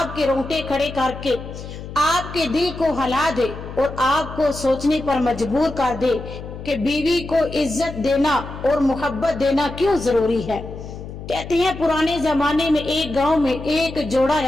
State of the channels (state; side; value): noise; left; hum, 11 dB below the sound